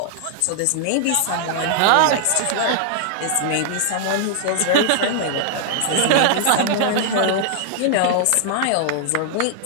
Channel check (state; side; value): different; both; correlation -0.01